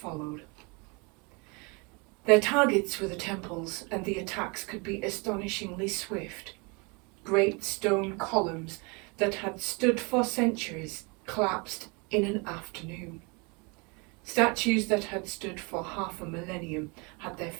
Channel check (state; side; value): quieter; left; 30.2 dB